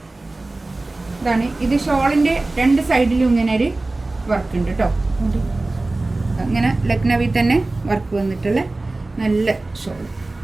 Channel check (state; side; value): quieter; left; 3.0 dB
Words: ഇതാണ് ഇത്. ഷോളിൻ്റെ 2 സൈഡിലും ഇങ്ങനെ ഒരു വർക്ക് ഉണ്ട് കേട്ടോ. അങ്ങനെ ലക്നവി തന്നെ വർക്ക് വന്നിട്ടുള്ള നല്ല ഷോൾ,